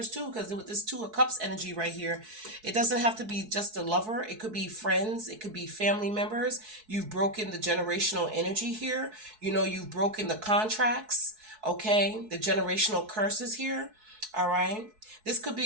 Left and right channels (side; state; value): left; late; 4.6 ms